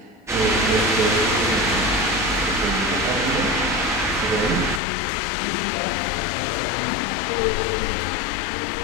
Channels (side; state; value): right; drops out; at 4.8 s